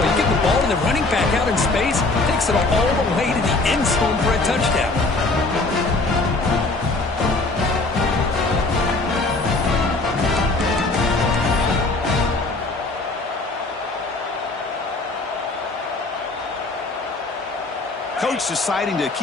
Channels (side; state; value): right; quieter; 3.3 dB